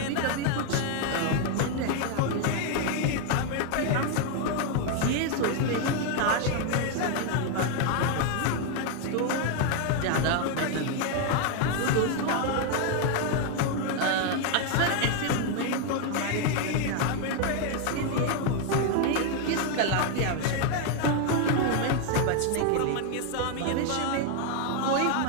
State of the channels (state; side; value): different; both; correlation 0.01